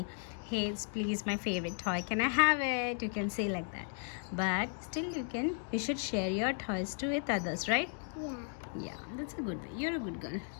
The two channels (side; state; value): right; silent; 54 dB below the other